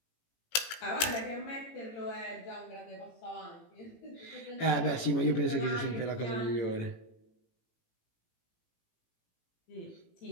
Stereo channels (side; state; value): right; late; 18 ms